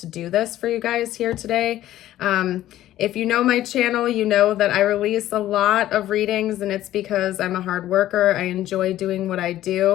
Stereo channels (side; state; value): right; quieter; 13.7 dB